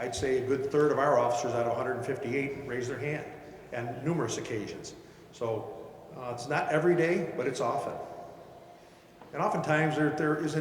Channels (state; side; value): identical; both; correlation 1.00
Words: say a good third of our officers out of 158 raise their hand on numerous occasions. So it's not every day, but it's often. And oftentimes there